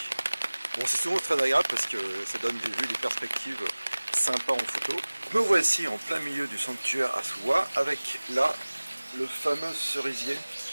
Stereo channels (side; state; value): both; inverted; correlation -1.00